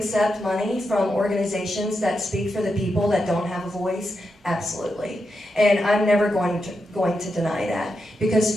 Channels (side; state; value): both; normal; correlation 0.86